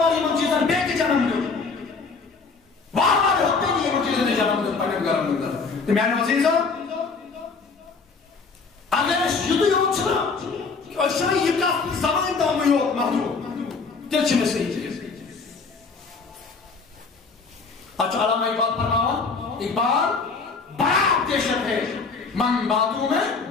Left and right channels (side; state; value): right; quieter; 4.6 dB